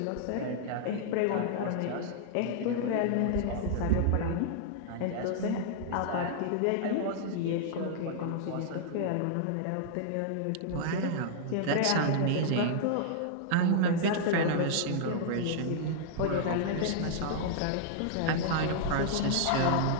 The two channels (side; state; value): both; different; correlation -0.01